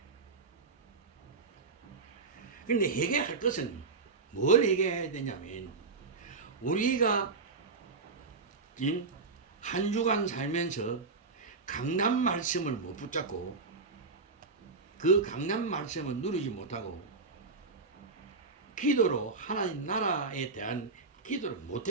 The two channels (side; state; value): left; quieter; 4.3 dB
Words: 그런데 해결할 것은 뭘 해결해야 되냐면 우리가 한 주간 살면서 강단 말씀을 못 붙잡고 그 강단 말씀을 누리지 못하고 기도로 하나님 나라에 대한 기도를